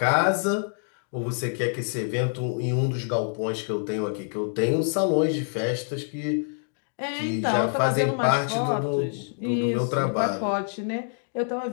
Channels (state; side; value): silent; right; digital silence